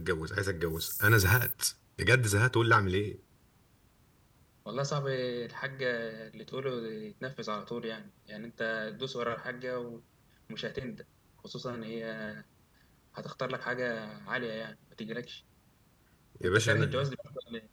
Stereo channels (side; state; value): both; identical; correlation 1.00